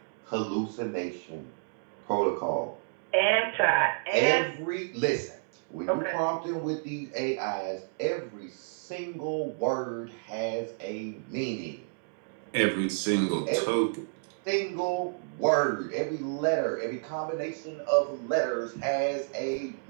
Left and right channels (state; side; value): silent; left; digital silence